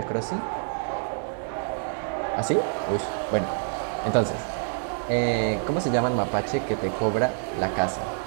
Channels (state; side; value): silent; left; 60 dB below the other